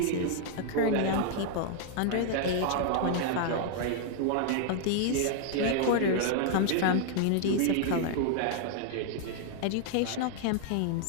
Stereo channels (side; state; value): both; different; correlation 0.00